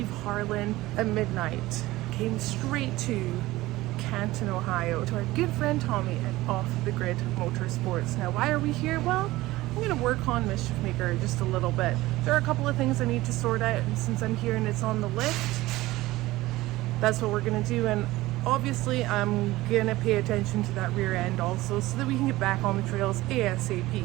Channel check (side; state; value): left; quieter; 18.2 dB